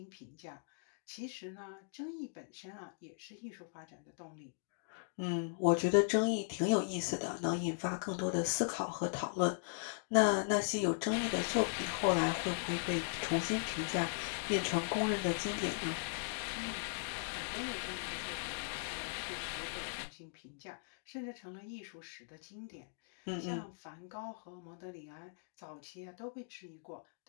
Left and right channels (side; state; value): right; silent; digital silence